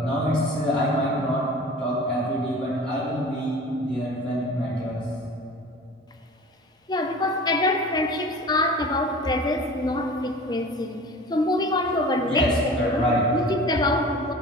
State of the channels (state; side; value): normal; both; correlation 0.40